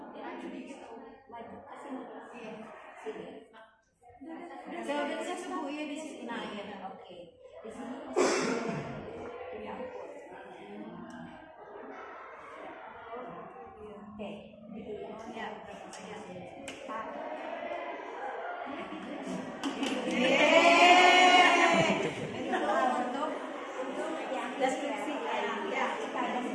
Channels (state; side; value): identical; both; correlation 1.00